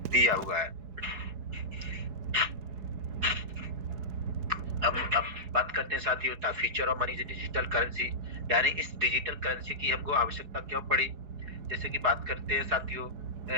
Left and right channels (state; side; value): late; left; 4.7 ms